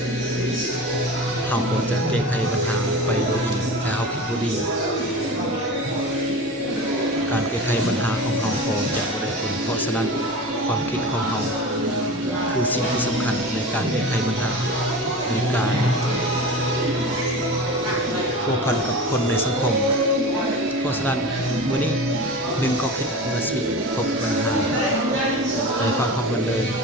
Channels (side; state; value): both; normal; correlation 0.32